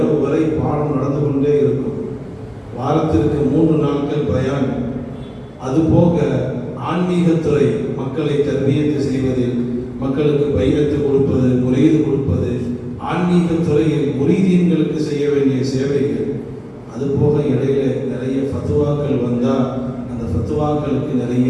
வரை பாடம் நடந்து கொண்டே இருக்கும். வாரத்திற்கு 3 நாட்கள் பயான். அதுபோக ஆன்மீகத்துறை, மக்களை தர்பியத்து செய்வதில், மக்களுக்கு பையத்து கொடுப்பது, முரீது கொடுப்பது, ஆன்மீகத்துறையில் முரீதீன்களுக்கு செய்ய வேண்டிய சேவைகள். அதுபோக இடையில நிறைய ஃபத்வாக்கள் வந்தால் அந்த ஃபத்வாக்களுக்கு நிறைய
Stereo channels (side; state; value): both; identical; correlation 1.00